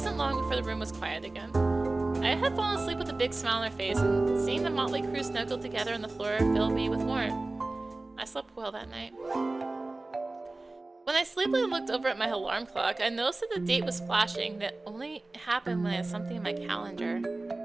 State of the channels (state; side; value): quieter; left; 3.0 dB